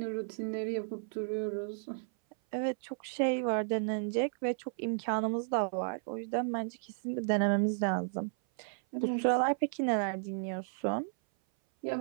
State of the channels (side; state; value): left; silent; 56 dB below the other